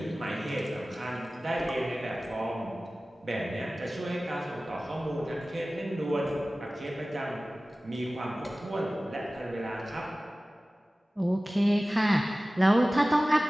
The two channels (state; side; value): normal; both; correlation 0.97